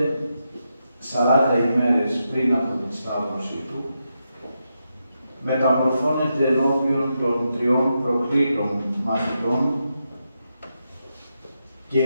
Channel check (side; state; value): both; inverted; correlation -0.85